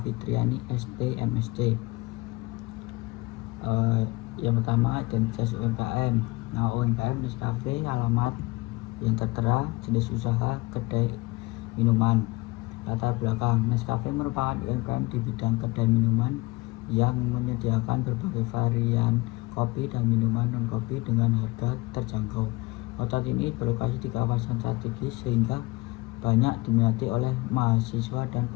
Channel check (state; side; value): quieter; right; 22.4 dB